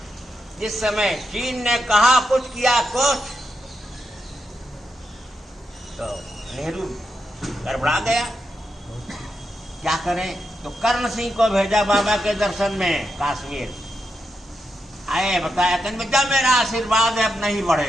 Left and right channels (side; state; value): both; normal; correlation 0.84